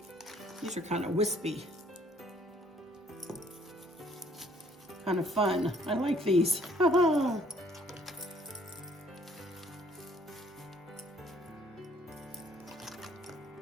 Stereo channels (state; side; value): normal; both; correlation 0.61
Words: These are kind of wispy. Kind of fun. I like these.